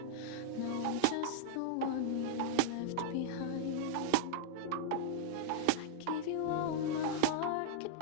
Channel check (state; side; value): different; both; correlation -0.01